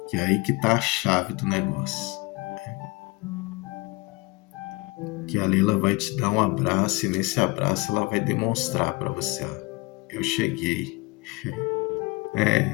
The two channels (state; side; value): quieter; right; 24.8 dB